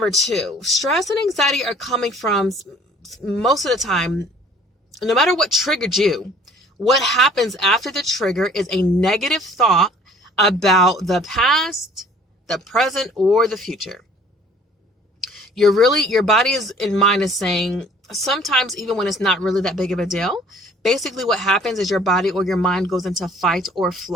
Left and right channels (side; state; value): both; normal; correlation 0.54